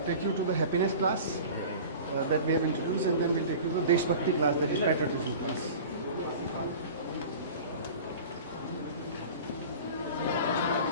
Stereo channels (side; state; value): both; inverted; correlation -0.38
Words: take you to the happiness class that we have introduced, and then we'll take you to the Deshbhakti class, that is patriotism class.